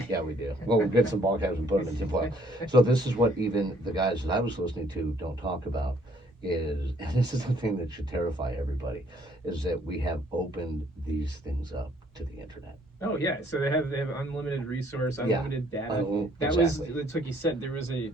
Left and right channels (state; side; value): normal; both; correlation 0.63